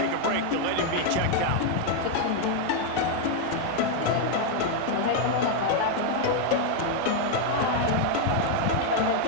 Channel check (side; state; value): both; different; correlation 0.00